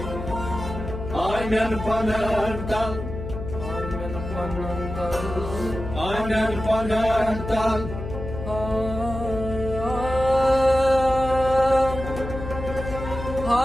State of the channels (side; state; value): left; noise; hum, 8 dB below the sound